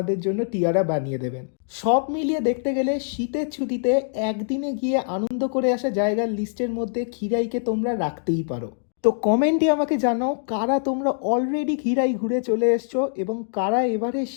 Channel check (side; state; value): right; silent; digital silence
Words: জন্য টিয়ারা বানিয়ে দেবেন। সব মিলিয়ে দেখতে গেলে শীতের ছুটিতে একদিনে গিয়ে আনন্দ করে আসা জায়গার লিস্টের মধ্যে খিরাইকে তোমরা রাখতেই পারো। তো কমেন্টে আমাকে জানাও কারা তোমরা অলরেডি খিরাই ঘুরে চলে এসছো এবং কারা এবারে